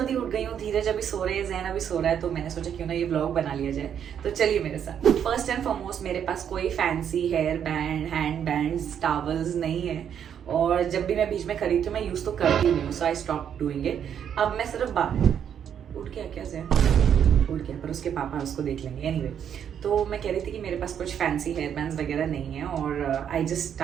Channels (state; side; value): quieter; left; 8.7 dB